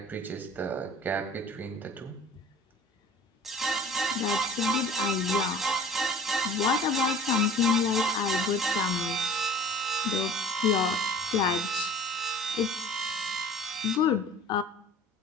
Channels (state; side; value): normal; both; correlation 0.47